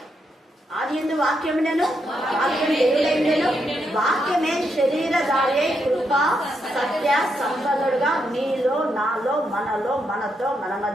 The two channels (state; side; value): normal; both; correlation 0.81